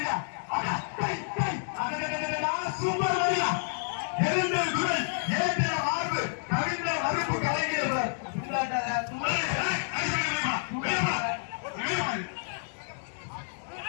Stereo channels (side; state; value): right; silent; digital silence